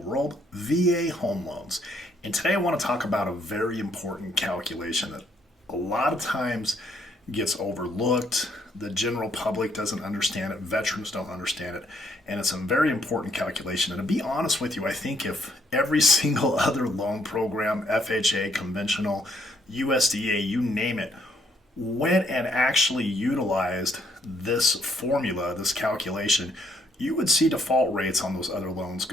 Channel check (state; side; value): normal; both; correlation 0.70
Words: world, VA home loans. And today I want to talk about a very important calculation that a lot of times gets overlooked. The general public doesn't understand it, veterans don't understand it, and it's a very important calculation. And to be honest with you, I think if every single other loan program, FHA, conventional, USDA, you name it, went and actually utilized this formula, this calculation, you would see default rates on those other loans